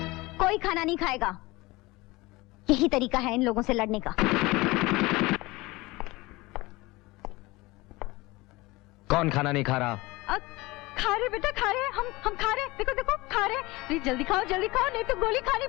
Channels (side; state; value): right; quieter; 21.6 dB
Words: कोई खाना नहीं खाएगा। यही तरीका है इन लोगों से लड़ने का। कौन खाना नहीं खा रहा? खा रहे बेटा, खा रहे। हम खा रहे। देखो देखो, खा रहे। प्लीज जल्दी खाओ, नहीं तो गोली खानी